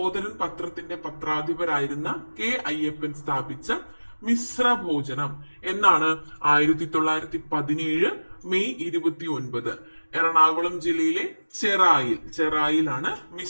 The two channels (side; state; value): both; inverted; correlation -1.00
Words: പത്രത്തിന്റെ പത്രാധിപരായിരുന്ന കെ അയ്യപ്പൻ സ്ഥാപിച്ച മിശ്ര ഭോജനം എന്നാണ് 1917 മെയ് 29 എറണാകുളം ജില്ലയിലെ ചെറായിലാണ്